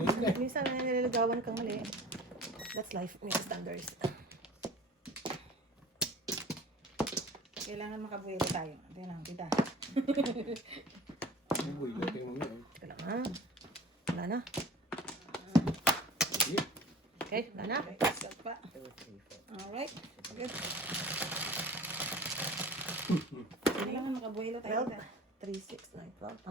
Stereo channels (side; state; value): both; normal; correlation 0.42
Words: ka eh. Minsan nililigawan kang mali. That's life. May standards. Kailangan makabuelo tayo. Tingnan lang, tita. Uy, okay mo yun. Teka lang ha. Wala na. Sige. Okay, wala na. Okay, start pa. Alright. Good. Kailangan makabuelo tayo. 12, 3, 6, 9, 12.